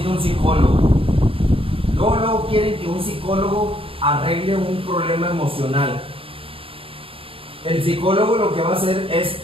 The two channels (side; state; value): left; late; 0.27 ms